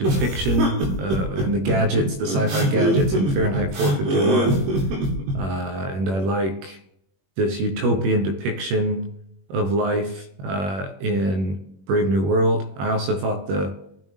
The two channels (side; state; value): left; late; 21 ms